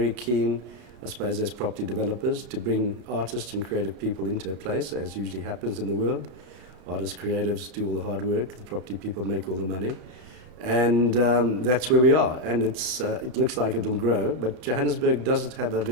keen, I suppose, as property developers, to bring artists and creative people into a place, as usually happens in the world. Artists, creatives do all the hard work, the property people make all the money. And that's where we are. And it looks like it'll grow, but Johannesburg does have a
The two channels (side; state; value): left; late; 34 ms